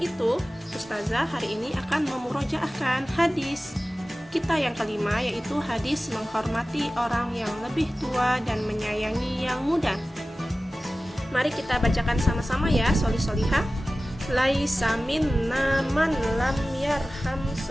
itu, Ustazah hari ini akan memurojaahkan hadis kita yang kelima, yaitu hadis menghormati orang yang lebih tua dan menyayangi yang muda. Mari kita bacakan sama-sama ya, Solih-Soliha. Laisa minna man lam yarham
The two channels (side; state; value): both; normal; correlation 0.96